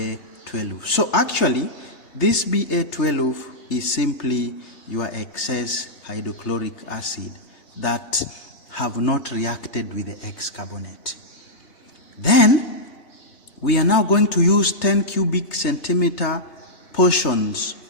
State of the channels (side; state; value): right; late; 3.3 ms